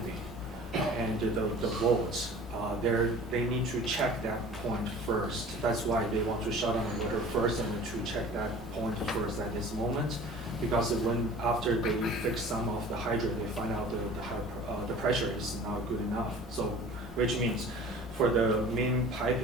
and the bolts. They need to check that point first. That's why they want to shut down the water first and to check that point first at this moment. Because after they fix some of the hydrant, they find out the pressure is not good enough. So, which means for the main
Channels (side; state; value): both; normal; correlation 0.44